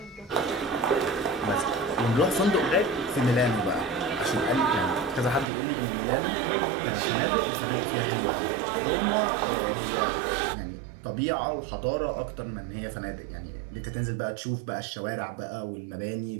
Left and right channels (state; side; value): drops out; left; at 5.5 s